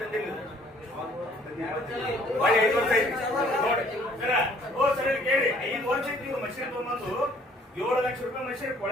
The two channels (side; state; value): both; normal; correlation 0.59